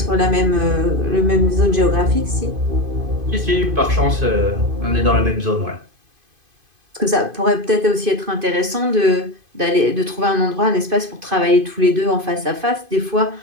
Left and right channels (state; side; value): late; left; 2.5 ms